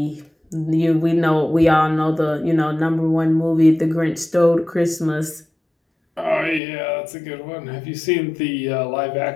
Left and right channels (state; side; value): drops out; right; at 6.6 s